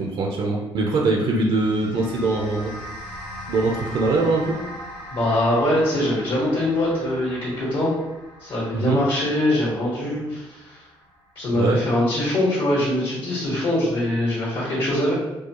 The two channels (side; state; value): both; normal; correlation 0.66